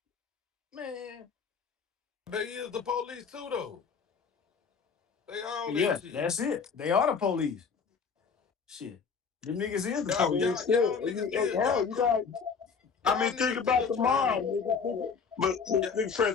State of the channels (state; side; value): quieter; right; 5.8 dB